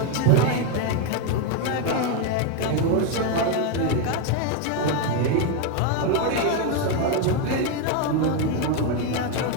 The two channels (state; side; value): different; both; correlation 0.01